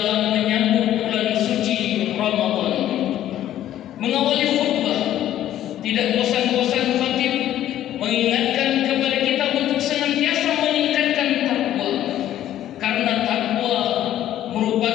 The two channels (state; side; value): quieter; right; 12.3 dB